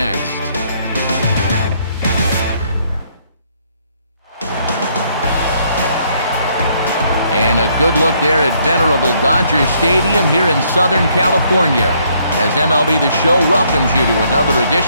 And a good look there at venerable Dodger Stadium here in Southern California, as MLB The Show welcomes you to another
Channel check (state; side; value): inverted; both; correlation -0.68